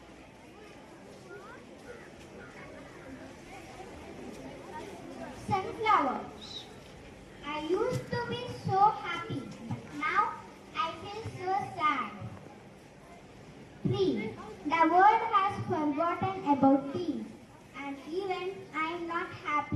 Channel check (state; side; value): identical; both; correlation 1.00